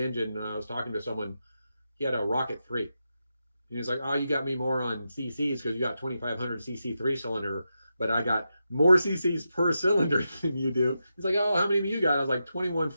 I was talking to someone. He had a Rocket 3, and he's like, "Oh, you got me more on CCs because you got 2500 CC 3 cylinder, but I got more CCs per cylinder than you do." He's like, "Oh, how many do you got?" I was like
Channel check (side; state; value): both; inverted; correlation -0.88